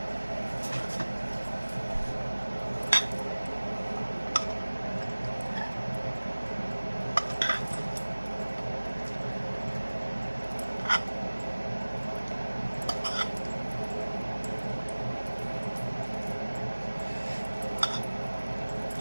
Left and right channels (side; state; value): both; inverted; correlation -1.00